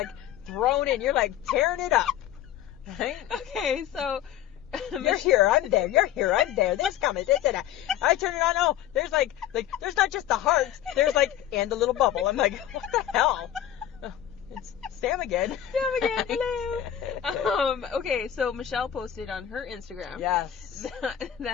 thrown in. You're like tearing it up. Right? Okay, so You're here, I'm there. You're here, I'm there. This coming, this and that. I turn it on. Oh, there's like there's not just the hearts. There's like and the little bubble. I'm like, what the hell? Oh, it's Sam again. Sam again. Hello. Okay, so Michelle posted on her Instagram Yes.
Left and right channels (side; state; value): right; quieter; 11.3 dB